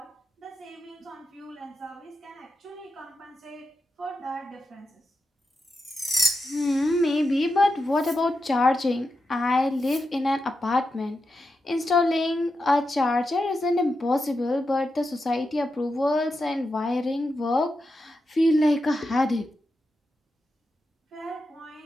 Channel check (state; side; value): normal; both; correlation 0.88